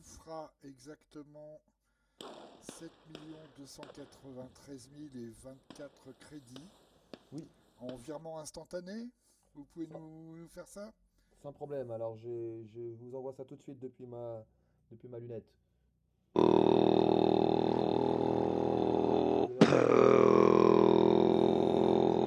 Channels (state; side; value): identical; both; correlation 1.00